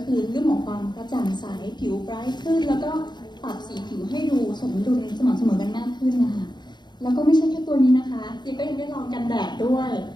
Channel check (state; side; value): late; right; 0.21 ms